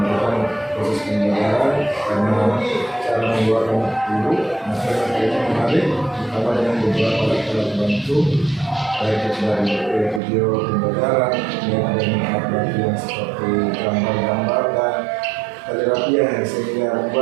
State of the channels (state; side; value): drops out; left; at 10.2 s